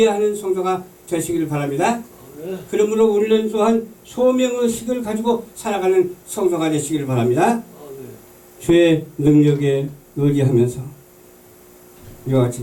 성도가 되시기를 바랍니다. 그러므로 우리는 또한 소명의식을 가지고 살아가는 성도가 되시기를 바랍니다. 주의 능력에 의지하면서 이와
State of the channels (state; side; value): identical; both; correlation 1.00